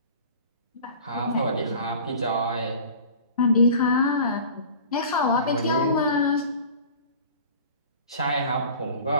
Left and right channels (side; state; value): both; inverted; correlation -0.42